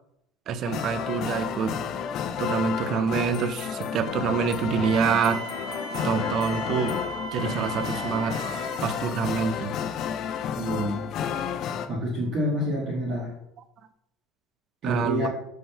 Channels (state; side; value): normal; both; correlation 0.50